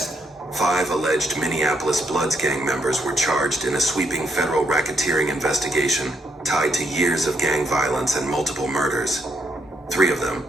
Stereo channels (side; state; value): both; normal; correlation 0.75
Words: 5 alleged Minneapolis Bloods gang members were charged in a sweeping federal racketeering investigation tied to years of gang violence and multiple murders. 3 of them,